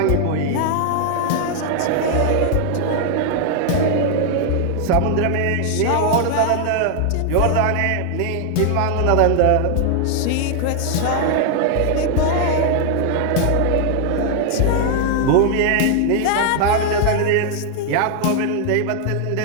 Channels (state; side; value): different; both; correlation 0.00